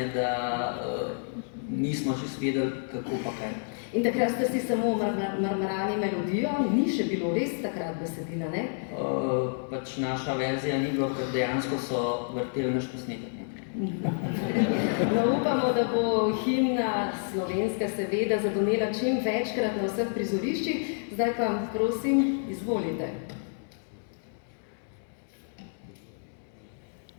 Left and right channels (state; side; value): silent; right; digital silence